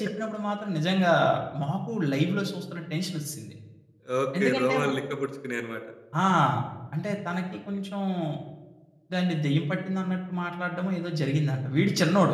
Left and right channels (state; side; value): identical; both; correlation 1.00